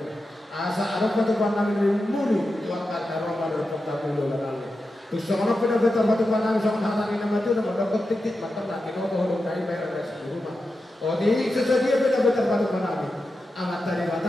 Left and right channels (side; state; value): both; normal; correlation 0.90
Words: asal apa tu kamu nabi mulu tuan dari Roma berpuk kamu lalu nabi tu seorang pernah betul betul nabi seorang hari nama tu nama dokter titik mata nabi kau boleh dari bayar dari rumah oh di sesuatu betul betul betul nabi amat tadi